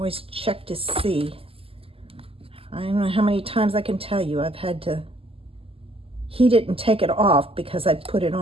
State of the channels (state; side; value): late; left; 0.27 ms